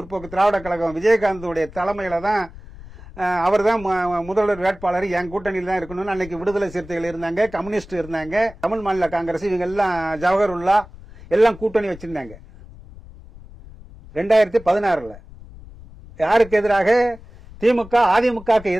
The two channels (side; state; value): left; noise; rumble, 18 dB below the sound